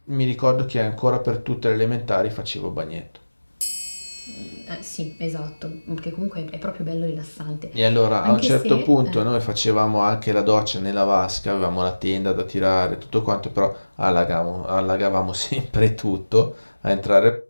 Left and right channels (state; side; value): inverted; both; correlation -1.00